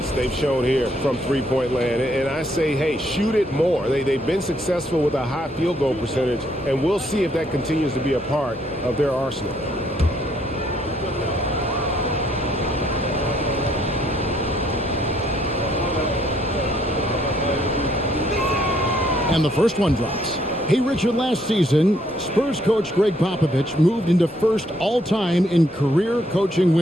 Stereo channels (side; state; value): both; normal; correlation 0.69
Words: they've shown here from three-point land. And I say, hey, shoot it more. They've been successful with a high field goal percentage, and we'll see if that continues to be a part of their arsenal. And the first one drops. Hey, Richard, last season, Spurs coach Greg Popovich moved into first all-time in career coaching